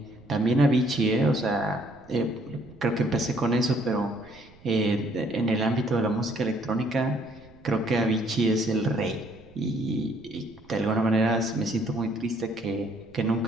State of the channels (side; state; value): right; noise; rumble, 25 dB below the sound